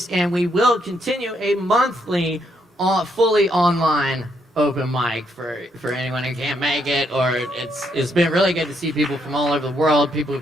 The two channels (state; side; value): normal; both; correlation 0.75